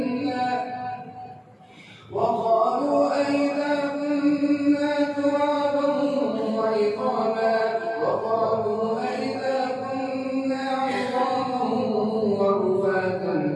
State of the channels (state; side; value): identical; both; correlation 1.00